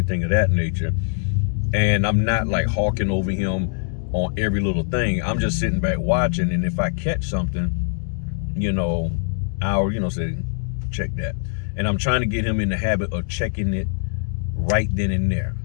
of that nature. And I'm not like hawking over him on every little thing. I'm just sitting back watching, and if I catch something, I'll say check that. And I'm trying to get him in the habit of checking it right then and there,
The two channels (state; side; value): silent; right; digital silence